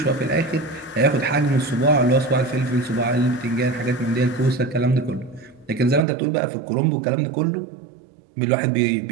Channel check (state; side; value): drops out; left; at 6.1 s